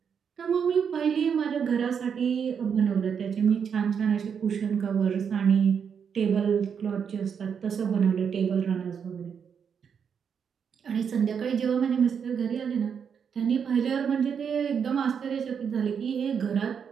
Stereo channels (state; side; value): quieter; left; 7.1 dB